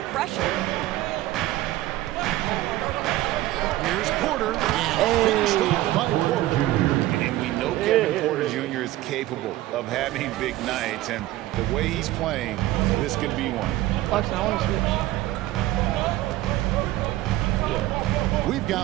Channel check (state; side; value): quieter; left; 16.1 dB